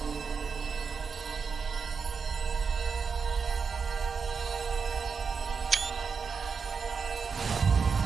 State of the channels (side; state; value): left; quieter; 5.6 dB